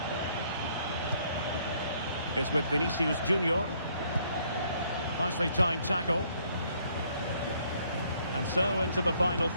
is with Vinicius Junior. Nicely timed tackle. And so into the final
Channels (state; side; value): inverted; both; correlation -0.66